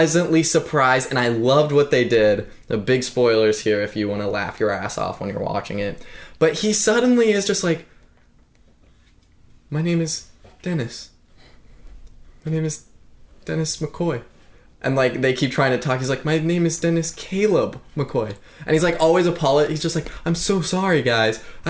surprised, and I loved what they did. The big spoilers here if you want to laugh your ass off when you're watching it. But he suddenly is just like, my name is Dennis. My name is Dennis McCoy. And like, they keep trying to talk. He's like, my name is Dennis Caleb McCoy. And he's like, always he's just like, I'm so sorry, guys.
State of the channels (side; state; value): both; identical; correlation 1.00